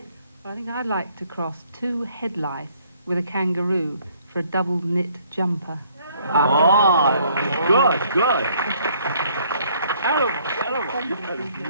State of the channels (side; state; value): both; inverted; correlation -0.63